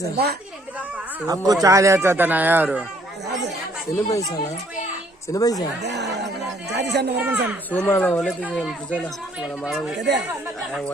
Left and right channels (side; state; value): both; normal; correlation 0.63